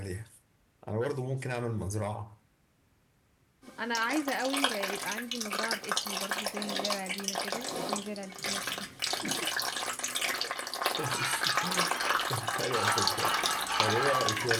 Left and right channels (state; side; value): identical; both; correlation 1.00